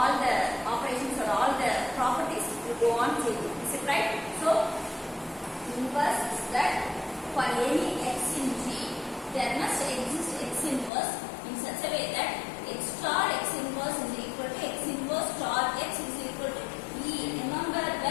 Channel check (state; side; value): drops out; right; at 10.9 s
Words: the operations or all the properties will go on changing. Is it right? So inverse is that for any x in G, there must exist x inverse in such a way that x star x inverse is equal to x inverse star x is equal to E. Remember